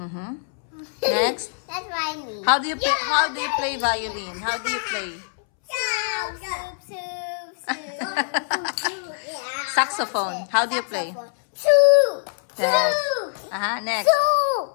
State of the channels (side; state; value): right; silent; 63 dB below the other